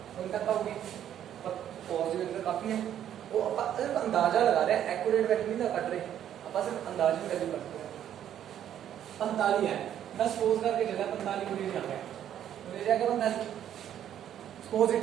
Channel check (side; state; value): left; quieter; 10.5 dB